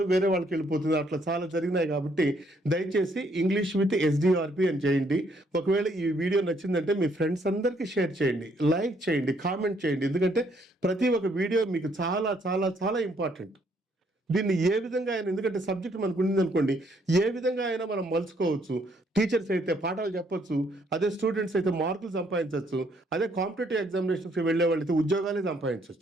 వేరే వాళ్ళకి వెళ్ళిపోతుంది. అట్లా చాలా జరిగినాయి. కాబట్టి దయచేసి ఇంగ్లీష్ విత్ SDRP అని చేయండి. ఒకవేళ ఈ వీడియో నచ్చిందంటే మీ ఫ్రెండ్స్ అందరికీ షేర్ చేయండి, లైక్ చేయండి, కామెంట్ చేయండి. ఎందుకంటే ప్రతి ఒక్క వీడియో మీకు చాలా చాలా చాలా ఇంపార్టెంట్. దీన్ని ఏ విధంగా అయినా, ఎందుకంటే సబ్జెక్ట్ మనకు ఉంది అనుకోండి, ఏ విధంగా అయినా మనం మలుచుకోవచ్చు. టీచర్స్ అయితే పాఠాలు చెప్పొచ్చు, అదే స్టూడెంట్స్ అయితే మార్కులు సంపాదించవచ్చు, అదే కాంపిటేటివ్ ఎగ్జామినేషన్స్కి వెళ్ళే వాళ్ళైతే ఉద్యోగాలే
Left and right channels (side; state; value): both; normal; correlation 0.69